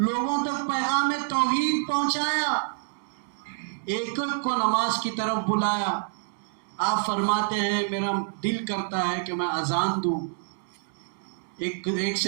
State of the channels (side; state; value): left; silent; digital silence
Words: تک پیغام توحید پہنچایا، ایک ایک کو نماز کی طرف بلایا۔ آپ فرماتے ہیں میرا دل کرتا ہے کہ میں اذان دوں، ایک